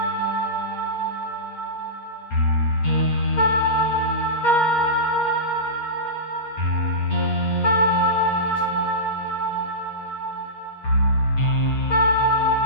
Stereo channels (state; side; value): late; right; 8.6 ms